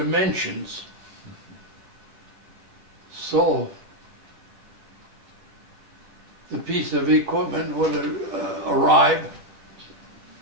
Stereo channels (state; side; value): late; left; 10 ms